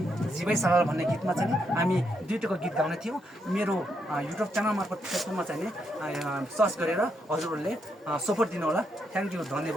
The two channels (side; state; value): both; normal; correlation 0.79